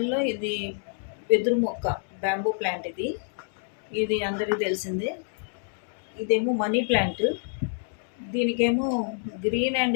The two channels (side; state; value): right; silent; digital silence